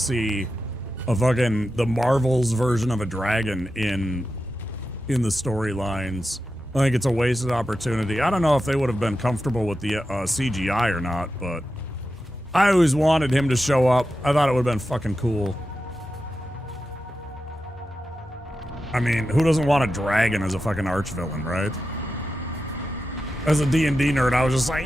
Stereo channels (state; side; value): normal; both; correlation 0.90